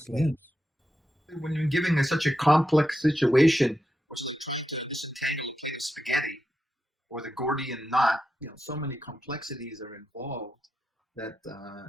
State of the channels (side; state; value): both; normal; correlation 0.87